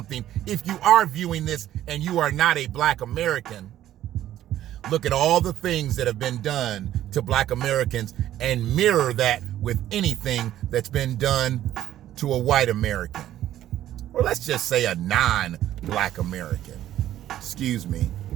if you are viewing this and you are not a black American, look at all the things that have been done to black Americans and mirror that with anything that's been done to a white American. Or let's just say a non-black American. Excuse me.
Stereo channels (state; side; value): quieter; left; 12.6 dB